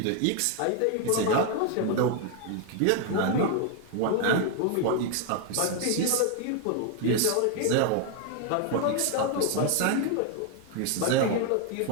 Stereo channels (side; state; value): both; different; correlation 0.01